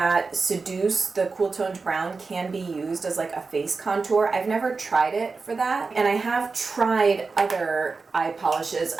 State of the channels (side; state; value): left; quieter; 4.3 dB